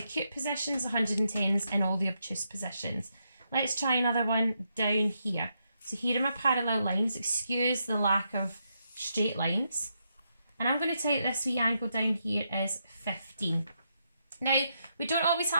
positions, 110s in all the obtuse positions. Let's try another one down here. So here are my parallel lines. Excuse the lack of straight lines. And I'm going to take this wee angle down here as 15. Now, we don't always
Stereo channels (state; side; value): inverted; both; correlation -0.81